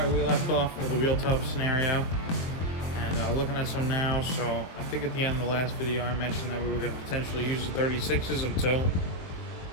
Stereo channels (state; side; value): late; right; 22 ms